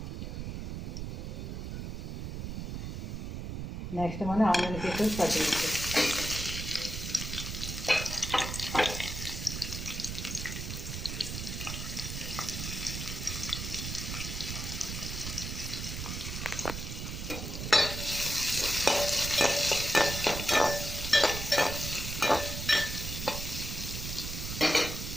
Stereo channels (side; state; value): right; noise; rumble, 5 dB below the sound